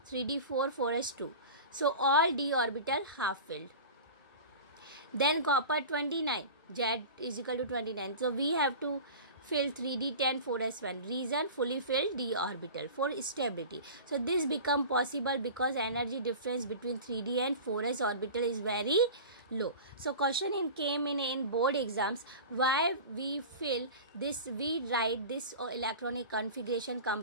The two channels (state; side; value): inverted; both; correlation -0.34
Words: 3d4 4s2. So all d orbital half filled. Then copper 29, Z is equal to 29. So we have to fill 3d10 4s1. Reason, fully filled d orbital for stability. So this become possible because energy difference between 3d and 4s orbital is very low. So question came in board exams, why we fill this, we write this electronic configuration